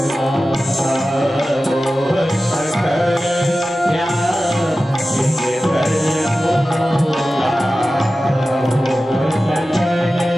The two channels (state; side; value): normal; both; correlation 0.94